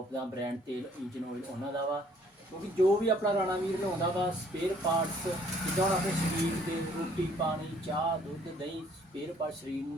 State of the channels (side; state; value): both; normal; correlation 0.61